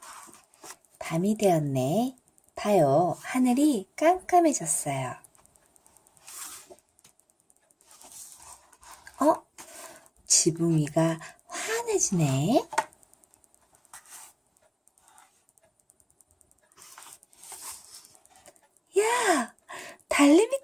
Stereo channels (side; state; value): both; identical; correlation 1.00